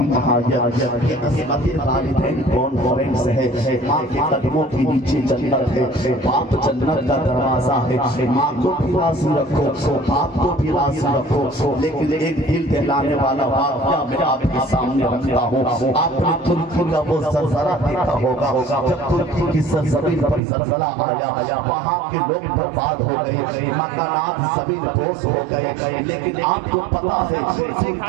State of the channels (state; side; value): drops out; left; at 20.4 s